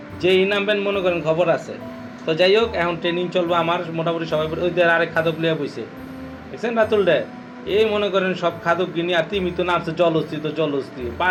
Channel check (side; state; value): both; identical; correlation 1.00